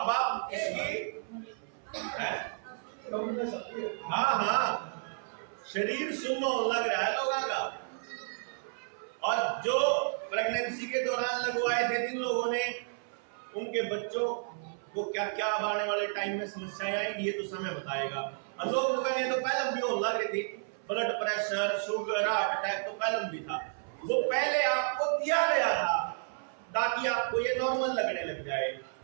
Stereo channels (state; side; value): silent; left; 56 dB below the other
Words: आप इसकी हाँ शरीर सुन्न लग रहा है लोगों का। और जो प्रेगनेंसी के दौरान लगवाए थे जिन लोगों ने, उनके बच्चों को क्या क्या आने वाले टाइम में समस्याएं आएंगी ये तो समय बताएगा। और लोग कहेंगे तो पहले भी होने लग रही थी, blood pressure, sugar, heart attack तो पहले भी था, वो पहले आपको दिया गया था ताकि आपको ये नॉर्मल लगने लग जाए।